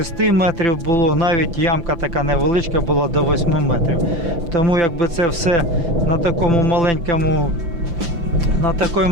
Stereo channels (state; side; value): late; left; 5.9 ms